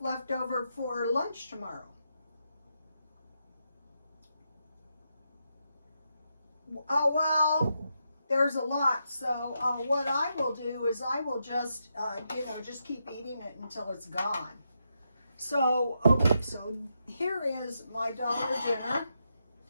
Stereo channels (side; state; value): both; inverted; correlation -0.83